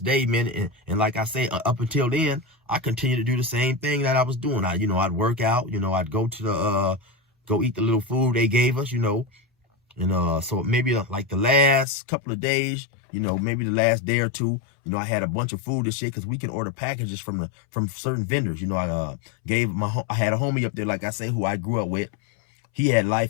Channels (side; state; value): right; drops out; at 11.9 s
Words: day, man, and like I say, up until then, I continued to do the same thing that I was doing. I'd work out, you know, I'd go to go eat the little food they gave us, you know. And so maybe like the last couple of days, you know, maybe the last day or two, you know, I had a bunch of food and shit, because we can order packages from certain vendors. You know, I had a homie up there, like I say, who I grew up with. He had